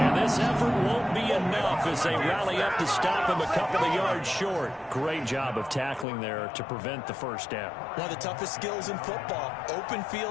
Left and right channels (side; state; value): right; drops out; at 6.1 s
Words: this effort won't be enough as they rally up to stop him a couple of yards short. Great job of tackling there to prevent the first down. One of the toughest skills in football, open